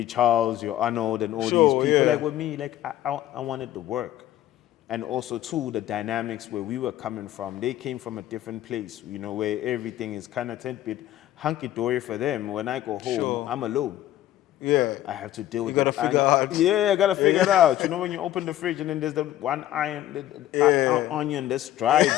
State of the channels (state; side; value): quieter; right; 13.3 dB